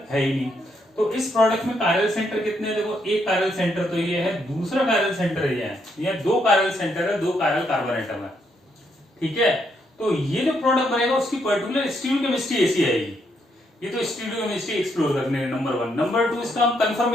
है ही नहीं, तो इस प्रोडक्ट में कायरल सेंटर कितने हैं, देखो एक कायरल सेंटर तो ये है, दूसरा कायरल सेंटर ये है, ये 2 कायरल सेंटर है, 2 कायरल कार्बन एटम है, ठीक है। तो ये जो प्रोडक्ट बनेगा उसकी पर्टिकुलर स्टीरियोकेमिस्ट्री ऐसी आएगी। ये तो स्टीरियोकेमिस्ट्री एक्सप्लोर करने हैं नंबर 1। नंबर 2 इसका हम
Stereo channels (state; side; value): normal; both; correlation 0.76